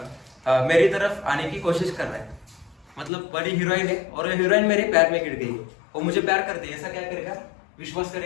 तरफ आने की कोशिश कर रहा है। मतलब बड़ी हीरोइन है और हीरोइन मेरे प्यार में गिर गई, वो मुझे प्यार करती है, ऐसा क्या करेगा, विश्वास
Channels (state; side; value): drops out; right; at 3.1 s